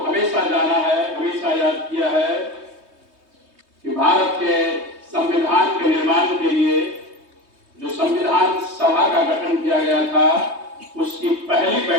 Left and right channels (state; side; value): late; left; 3.2 ms